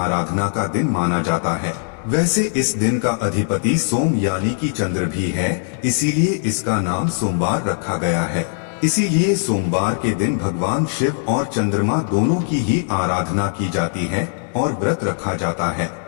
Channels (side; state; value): right; silent; 66 dB below the other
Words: का दिन माना जाता है। वैसे इस दिन का अधिपति सोम यानी कि चंद्र भी है, इसीलिए इसका नाम सोमवार रखा गया है। इसीलिए सोमवार के दिन भगवान शिव और चंद्रमा दोनों की ही आराधना की जाती है और व्रत रखा जाता है।